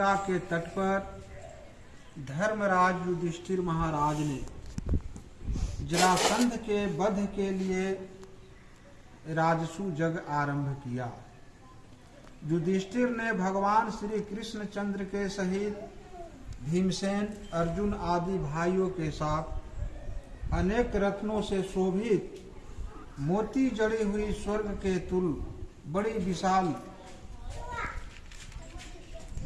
के तट पर धर्मराज युधिष्ठिर महाराज ने जरासंध के वध के लिए राजसू यज्ञ आरंभ किया। युधिष्ठिर ने भगवान श्री कृष्ण चंद्र के सहित भीमसेन, अर्जुन आदि भाइयों के साथ अनेक रत्नों से शोभित मोती जड़ी हुई स्वर्ग के तुल बड़ी विशाल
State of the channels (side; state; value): both; identical; correlation 1.00